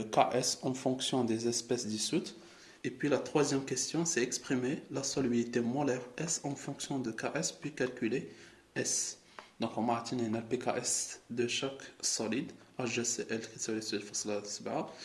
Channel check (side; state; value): both; identical; correlation 1.00